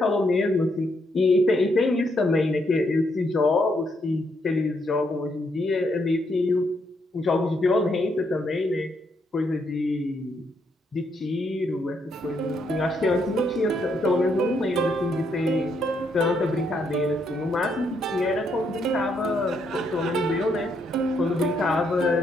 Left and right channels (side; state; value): both; normal; correlation 0.75